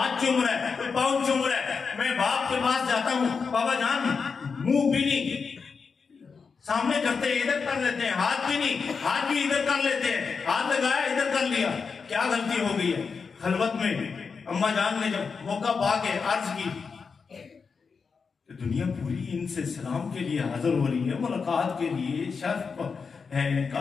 چوم رہا ہے، کوئی پاؤں چوم رہا ہے، میں باپ کے پاس جاتا ہوں، بابا جان منہ بھی نہیں سامنے کرتے، ادھر کر لیتے ہیں، ہاتھ بھی نہیں، ہاتھ بھی ادھر کر لیتے ہیں، ہاتھ لگایا ادھر کر لیا، کیا غلطی ہو گئی ہے؟ خلوت میں اماں جان نے جب موقع پا کے عرض کی کہ دنیا پوری ان سے سلام کے لیے حاضر ہو رہی ہے، ملاقات کے لیے، شرف ہے ان کا،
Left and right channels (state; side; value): quieter; right; 5.3 dB